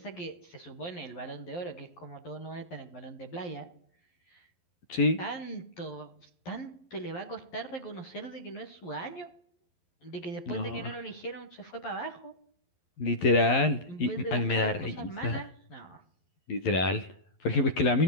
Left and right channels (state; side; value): late; right; 11 ms